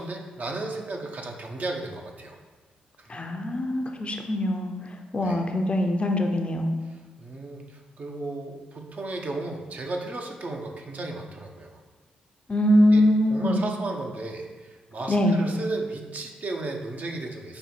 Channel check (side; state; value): both; normal; correlation 0.83